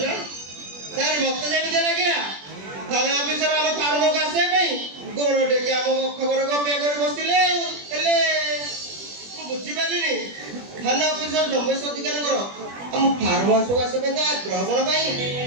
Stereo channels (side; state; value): left; late; 21 ms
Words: सर मत जेमिते लागिला थाना ऑफिसर हम फार्म को आसे पई गोरोटे के हम खबर को पे कर बसिले हेले मु बुझी पालिनी थाना ऑफिसर जमेश अधिकार करो हम फार्म हाउस को आसे पे ग्रहण पई